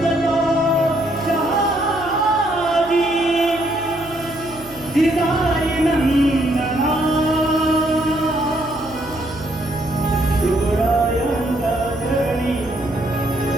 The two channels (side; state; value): right; noise; hum, 20 dB below the sound